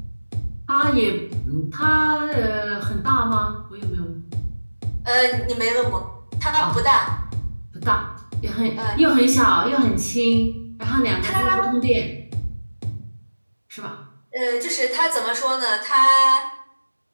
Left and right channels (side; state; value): both; inverted; correlation -1.00